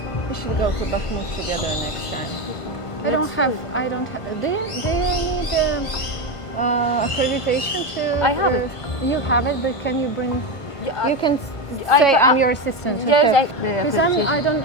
We should go to Bakhmut together next time. I don't have. Do you need accreditation to? I have it. You have it, but can you bring? You can say I'm your assistant. Yes, because I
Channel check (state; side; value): late; right; 1.5 ms